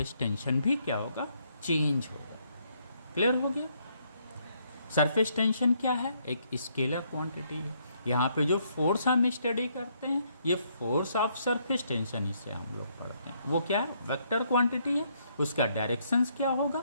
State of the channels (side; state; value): both; inverted; correlation -0.72